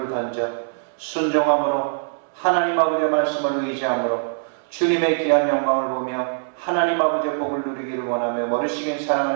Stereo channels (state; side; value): silent; left; 64 dB below the other